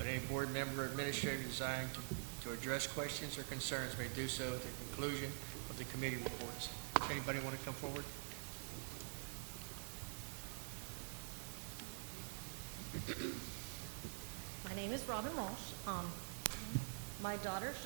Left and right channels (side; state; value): left; silent; digital silence